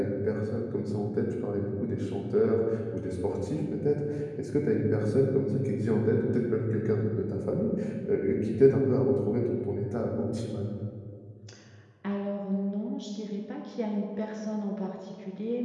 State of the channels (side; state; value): both; identical; correlation 1.00